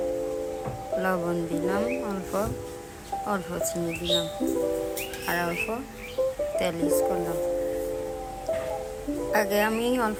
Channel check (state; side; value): identical; both; correlation 1.00